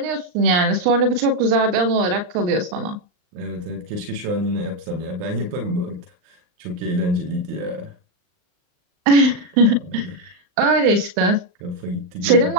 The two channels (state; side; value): late; left; 39 ms